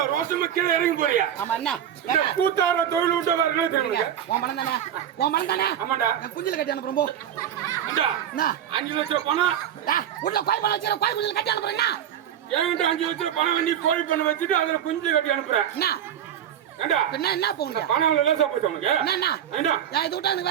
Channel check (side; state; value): left; quieter; 9.9 dB